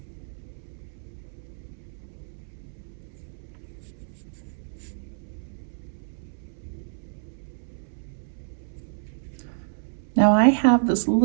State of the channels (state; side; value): silent; left; 59 dB below the other